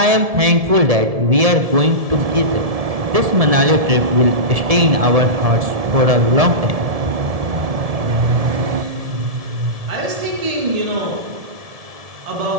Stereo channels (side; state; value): left; late; 1.7 ms